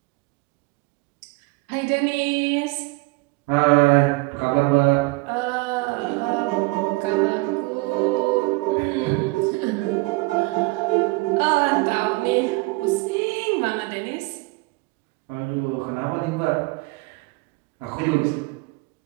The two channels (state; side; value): quieter; left; 25.3 dB